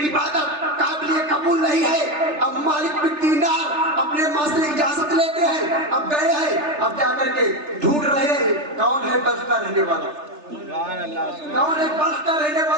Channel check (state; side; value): late; left; 3.3 ms